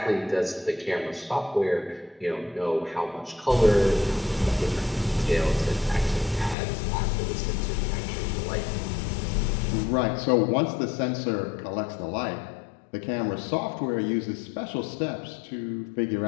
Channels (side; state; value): right; drops out; at 6.6 s